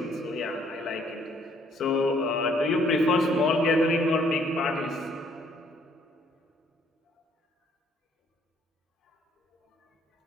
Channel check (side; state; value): both; normal; correlation 0.64